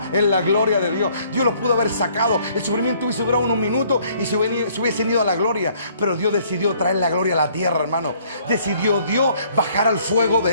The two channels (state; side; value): inverted; both; correlation -0.62